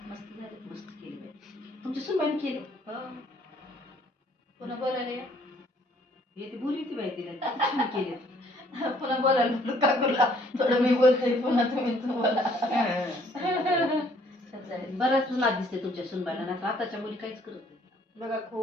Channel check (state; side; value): normal; both; correlation 0.63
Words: मस्त झाले मस्त केली बाई तुमच्या सुनबाईने केले. पुन्हा बोलायला येते बोलली ती बाई तिला छान केले. पुन्हा बोलायला काकूला थोडं मी बोलते पुन्हा तुम्ही बोला. बराच नाद दिसते तुमच्या सुनबाईला नाही आताच्या मुली काहीच करत नाही. बघा